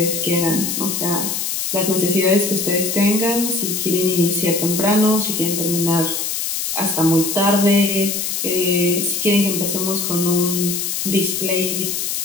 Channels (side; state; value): left; noise; hiss, 2 dB below the sound